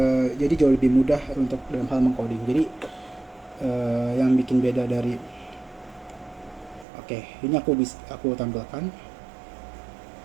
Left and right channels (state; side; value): drops out; left; at 6.9 s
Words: jadi jauh lebih mudah untuk dalam hal mengcoding. Jadi yang bikin beda dari Oke, ini aku tampilkan